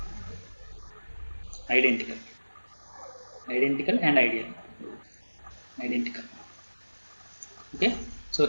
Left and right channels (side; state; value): both; inverted; correlation -1.00